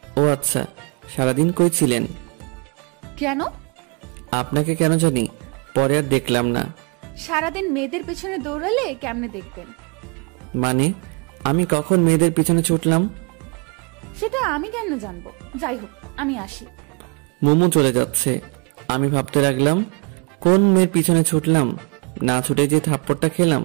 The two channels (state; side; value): quieter; left; 34.7 dB